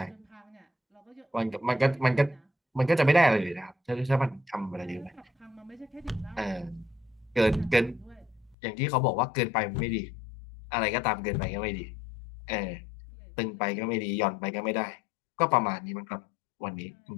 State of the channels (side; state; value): right; drops out; at 8.6 s